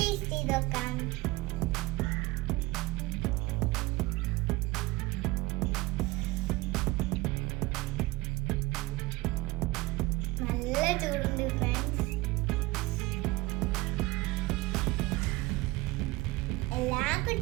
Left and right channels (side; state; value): left; quieter; 20.5 dB